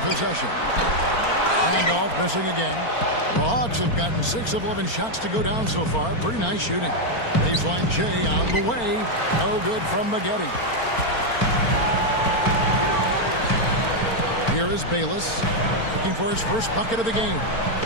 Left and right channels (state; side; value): late; right; 4.4 ms